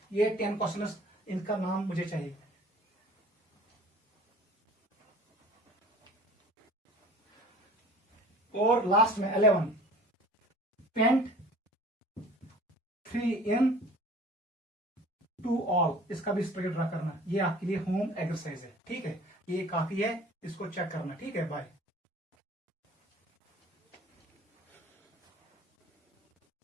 ये 10 क्वेश्चन, इनका नाम मुझे चाहिए। और लास्ट में 11, पेंट 3 इन 2 ऑल। इसका भी स्ट्रक्चर ड्रा करना। ये आपके लिए होम एक्सरसाइज है, ठीक है? ये काफी है, इसको चेक करना, ठीक है? बाय।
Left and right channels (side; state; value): both; normal; correlation 0.46